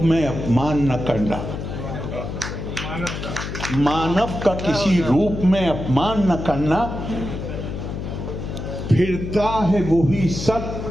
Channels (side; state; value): left; noise; hum, 6 dB below the sound